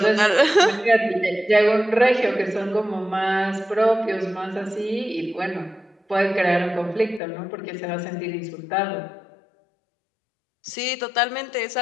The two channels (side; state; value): right; drops out; at 7.2 s